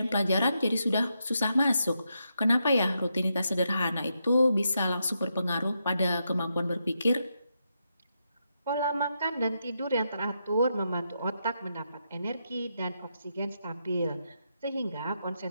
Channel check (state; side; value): inverted; both; correlation -0.83